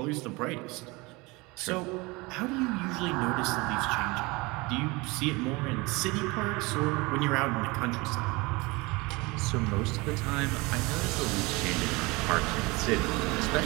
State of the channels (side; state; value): left; quieter; 24.4 dB